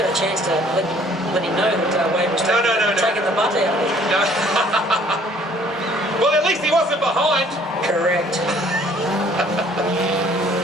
a chance to let him know that Wade was taking the butt out of him. No. Well, at least he wasn't behind. Correct.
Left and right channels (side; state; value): both; normal; correlation 0.57